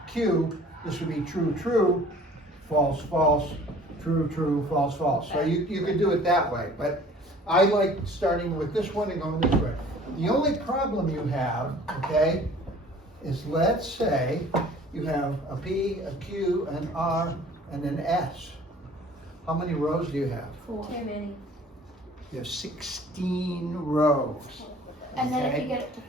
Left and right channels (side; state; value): both; normal; correlation 0.50